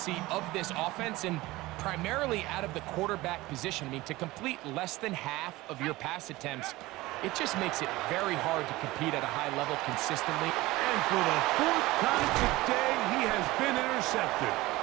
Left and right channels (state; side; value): quieter; left; 19.3 dB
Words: of this offense and primarily out of the quarterback position. I mean, to complete less than half of your pass attempts, it just makes it very hard to compete at a high level consistently. And for the 4th time today, he has been intercepted.